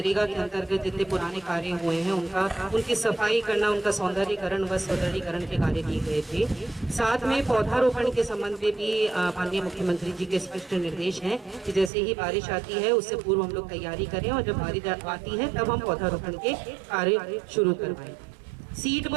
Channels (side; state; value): left; drops out; at 11.9 s